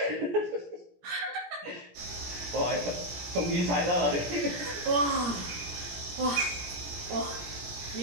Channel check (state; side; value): late; left; 17 ms